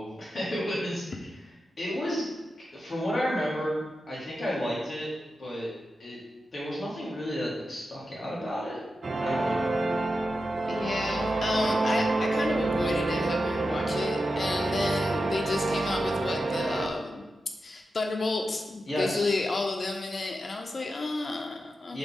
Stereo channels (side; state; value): both; normal; correlation 0.90